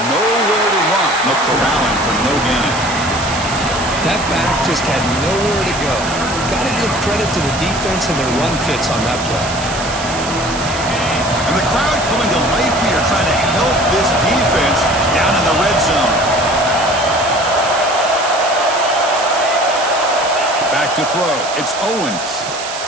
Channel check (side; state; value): right; noise; hiss, 9 dB below the sound